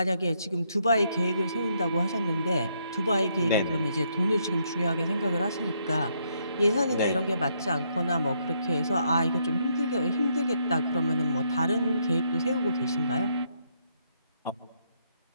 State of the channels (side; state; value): both; inverted; correlation -0.74